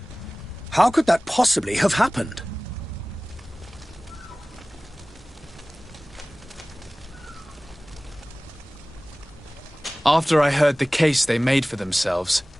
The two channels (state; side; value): normal; both; correlation 0.98